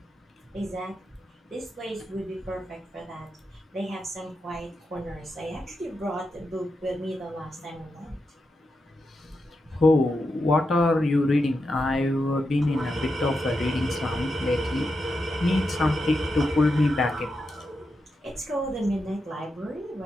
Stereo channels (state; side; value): normal; both; correlation 0.86